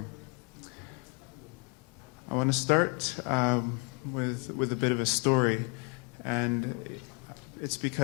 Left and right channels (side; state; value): right; quieter; 34.5 dB